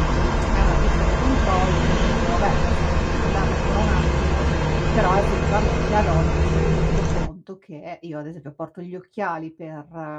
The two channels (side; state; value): both; identical; correlation 1.00